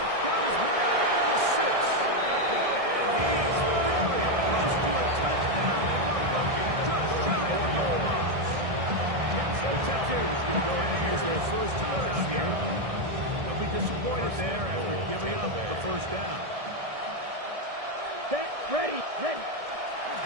Got his man at the 6. And he's very close to a touchdown. They want him just shy of the goal line. The Texans going to go ahead and use their first time out here. They'll be disappointed there after giving up the first down. Set. Ready.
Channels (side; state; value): left; late; 1.6 ms